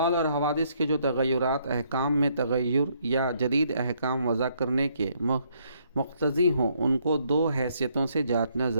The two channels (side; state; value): both; inverted; correlation -0.70